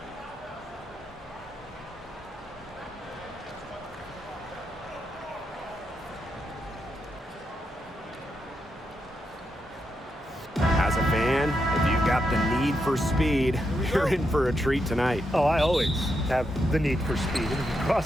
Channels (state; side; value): normal; both; correlation 0.83